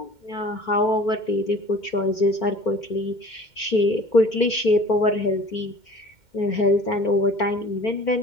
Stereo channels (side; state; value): right; late; 2.1 ms